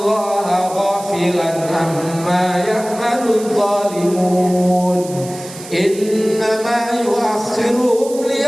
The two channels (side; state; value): right; noise; hiss, 15 dB below the sound